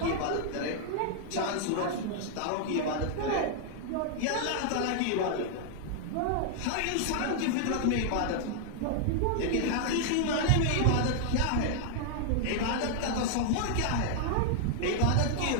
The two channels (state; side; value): different; both; correlation 0.00